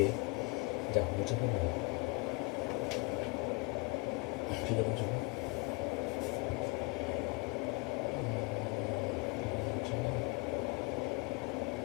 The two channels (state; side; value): quieter; right; 28.5 dB